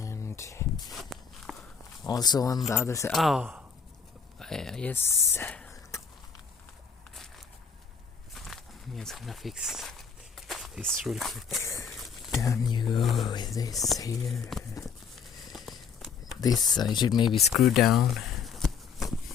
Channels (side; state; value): right; quieter; 6.2 dB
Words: also on the other side. Oh, yes. I'm just gonna fix this real quick. Down you go with this here. This I should maybe screw down